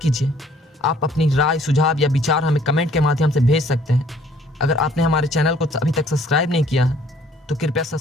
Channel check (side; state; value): both; normal; correlation 0.59